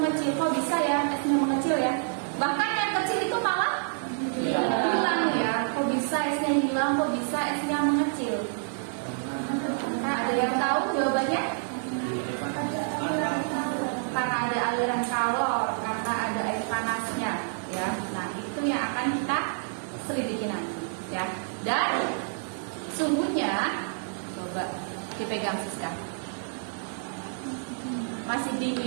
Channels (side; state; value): left; silent; 59 dB below the other